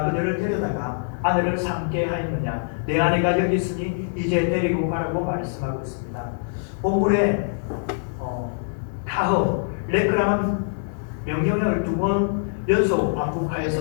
그들을 데려다가 아내를 삼게 하였느냐 내 아내가 여기 있으니 이제 데리고 가라고 말씀하고 있습니다. 본문에 카흐 레크라는 명령을 2번 연속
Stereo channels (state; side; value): silent; right; digital silence